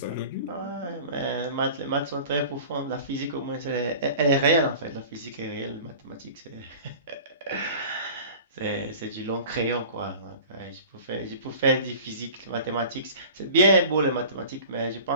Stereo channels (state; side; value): inverted; both; correlation -0.41